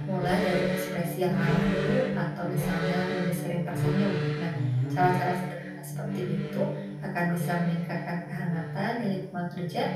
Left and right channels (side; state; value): both; identical; correlation 1.00